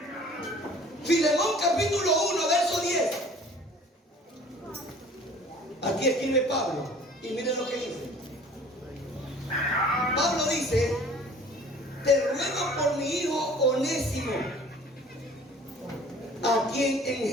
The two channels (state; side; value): normal; both; correlation 0.49